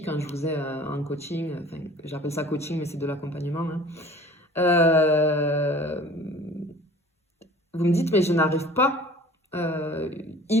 quand je vous ai en coaching, enfin, j'appelle ça coaching, mais c'est de l'accompagnement, hein. Vous me dites, mais je n'arrive pas.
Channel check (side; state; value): both; normal; correlation 0.46